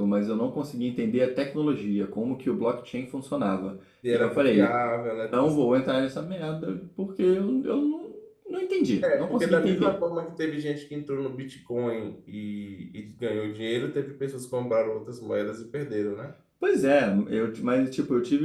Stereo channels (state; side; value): identical; both; correlation 1.00